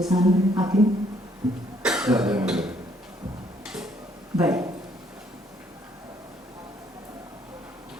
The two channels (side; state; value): both; normal; correlation 0.66